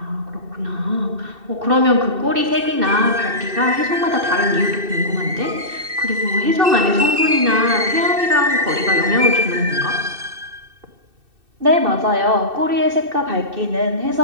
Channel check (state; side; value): late; left; 2.6 ms